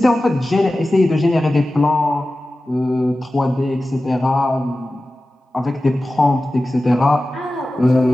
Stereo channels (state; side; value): normal; both; correlation 0.95